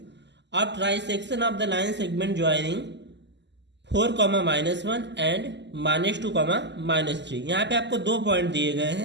of trisection of the line segment joining 4, -1 and -2, -3। यहाँ पे आपको दो पॉइंट दिए गए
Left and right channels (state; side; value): late; left; 0.51 ms